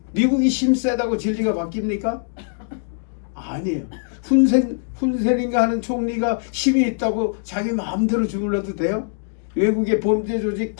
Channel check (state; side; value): silent; right; 64 dB below the other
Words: 미국이 힘세다고 진리가 바뀝니까? 아니에요. 훈센인가 하는 총리가 힘이 있다고 자기 마음대로 주물러도 돼요? 외국의 범죄 조직